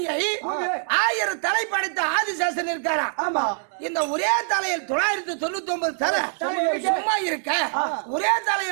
1000 தலை படைத்த ஆதிசேஷன் இருக்காரா இந்த ஒரே தலையில் 999 தலை சும்மா இருக்க ஒரே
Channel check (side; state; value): left; silent; 62 dB below the other